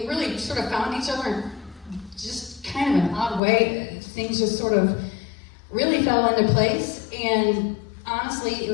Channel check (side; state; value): right; drops out; at 3.4 s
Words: sort of found each other in just kind of an odd way. Things just sort of really fell into place. And honestly, it